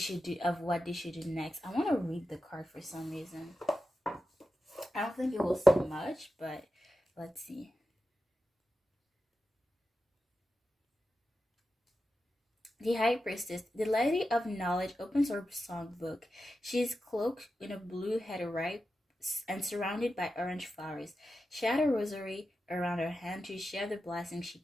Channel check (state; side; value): normal; both; correlation 0.91